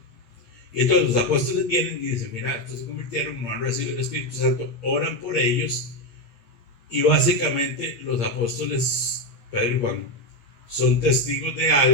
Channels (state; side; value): late; right; 8.6 ms